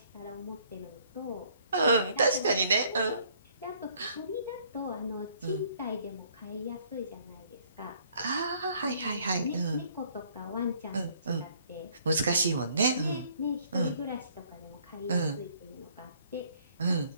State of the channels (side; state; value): both; inverted; correlation -0.62